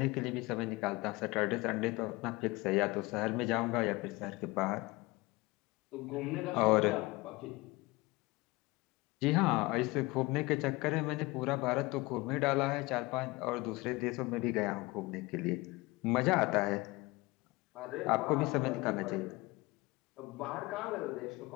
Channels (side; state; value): right; quieter; 22.5 dB